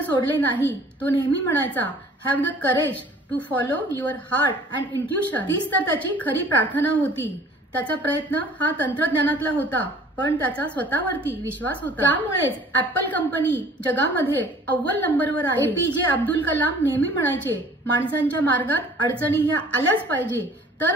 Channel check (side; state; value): both; normal; correlation 0.51